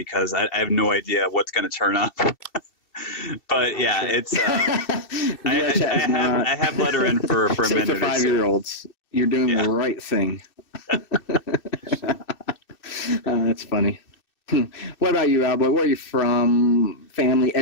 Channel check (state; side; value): late; right; 2.6 ms